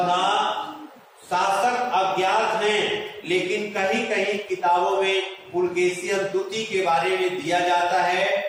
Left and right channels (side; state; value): both; identical; correlation 1.00